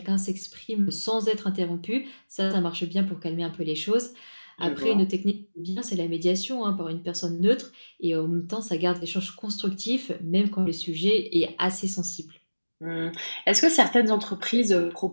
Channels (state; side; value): inverted; both; correlation -1.00